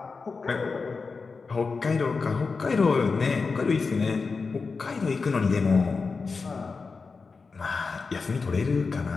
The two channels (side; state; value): right; quieter; 4.6 dB